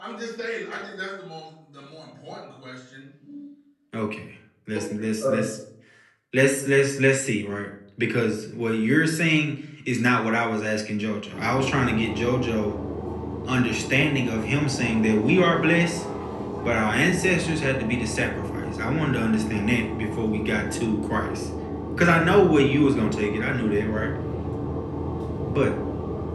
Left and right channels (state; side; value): identical; both; correlation 1.00